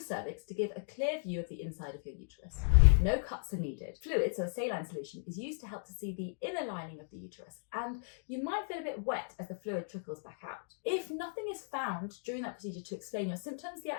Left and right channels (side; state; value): right; silent; digital silence